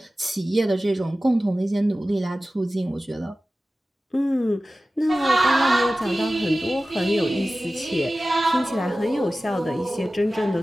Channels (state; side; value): normal; both; correlation 0.96